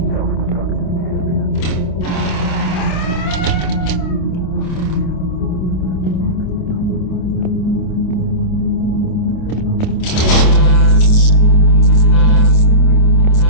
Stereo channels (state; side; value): late; right; 27 ms